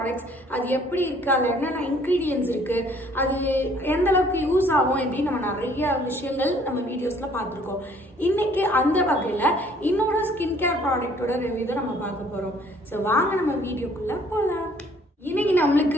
அது எப்படி இருக்குது, அதில் என்னென்ன இன்க்ரீடியன்ஸ் இருக்குது, அது எந்த அளவுக்கு யூஸ் ஆகும் அப்படின்னு நம்ம நிறைய விஷயங்கள் நம்ம வீடியோஸில் பார்த்துருக்கோம். இன்னைக்கு அந்த வகையில் இன்னொரு ஸ்கின் கேர் ப்ராடக்டோட ரிவ்யூ தான் நம்ம பார்க்க போகிறோம். ஸோ வாங்க நம்ம வீடியோக்குள்ளே போகலாம். இன்னைக்கு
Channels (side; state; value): both; normal; correlation 0.59